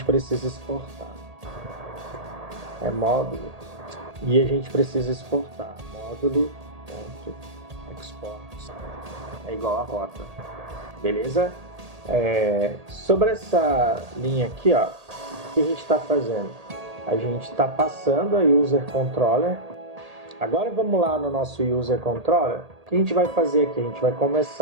precisa exportar. É módulo. E a gente precisa exportar. Módulo.export é igual a rota. Beleza? Sobre essa linha aqui, ó, o que a gente está fazendo? A gente está passando a user controller. Agora vamos lá no nosso user controller. O que a gente vai fazer aqui? A gente vai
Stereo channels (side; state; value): left; late; 1.8 ms